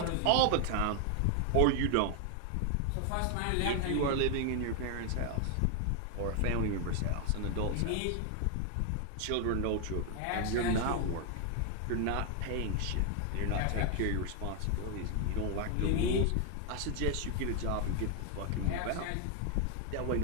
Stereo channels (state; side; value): different; both; correlation 0.00